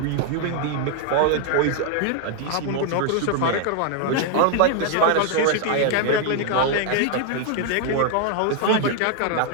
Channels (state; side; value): different; both; correlation 0.00